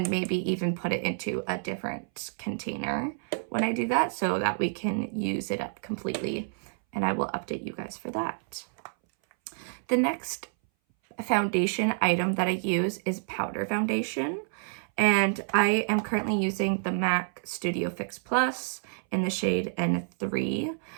maybe even put it into a different container when I do that so that we can use it up completely. And I will update you guys for that. The next foundation item that I use is powder foundation. And I am currently using the MAC Studio Fix Plus in the shade N3.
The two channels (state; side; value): silent; left; 59 dB below the other